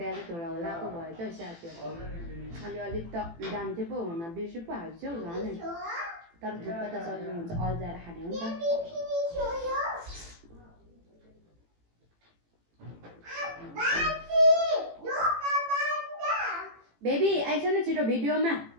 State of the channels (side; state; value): left; late; 18 ms